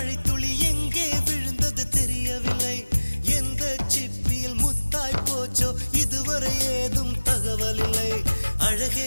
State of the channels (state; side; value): inverted; both; correlation -1.00